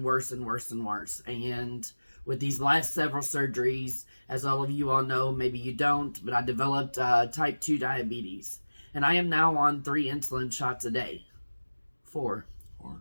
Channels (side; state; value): both; inverted; correlation -1.00